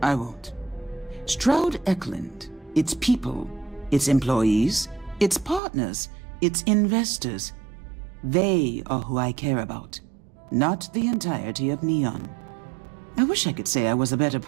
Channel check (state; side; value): drops out; left; at 5.6 s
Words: I won't. Stroud Eklund, its people, its employees, its partners, its investors, they are who I care about, not the entirety of Neon. I wish I could say I was a better